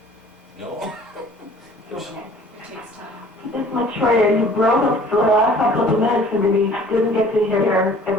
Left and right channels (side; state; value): both; normal; correlation 0.51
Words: No? Miss Maitreya, you broke up for the last couple of minutes and we didn't get to hear